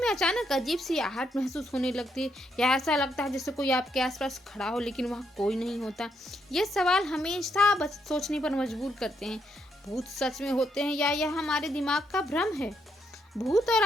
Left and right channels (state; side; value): normal; both; correlation 0.77